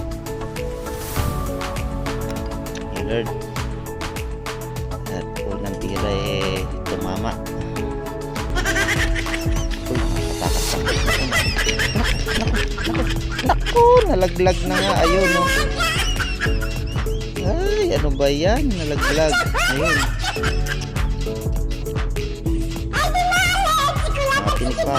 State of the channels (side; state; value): both; identical; correlation 1.00